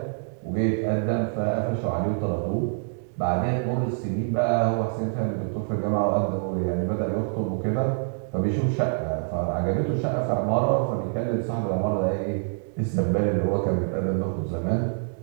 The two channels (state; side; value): silent; left; 61 dB below the other